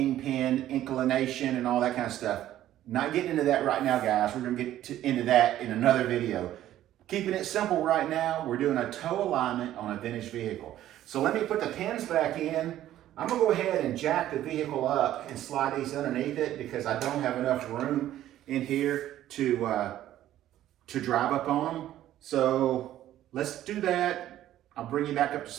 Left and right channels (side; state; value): left; quieter; 12.9 dB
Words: inclination, and all that kind of stuff. Not getting into that right now, guys. We're gonna get into that in another video. Keeping it simple right now, we're doing a toe alignment on a vintage vehicle. So let me put the pins back in. I'm gonna go ahead and jack the vehicle up and slide these underneath it because I don't have enough room in here to drive up on them. So let's do that. I'll bring you back up to